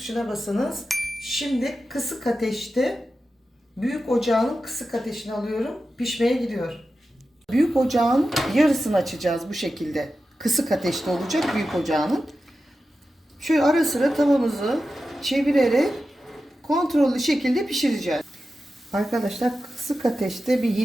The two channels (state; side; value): normal; both; correlation 0.92